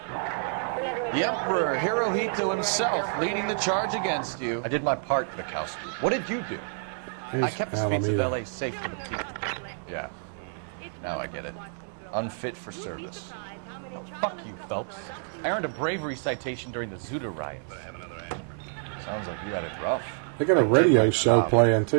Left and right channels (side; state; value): left; silent; 59 dB below the other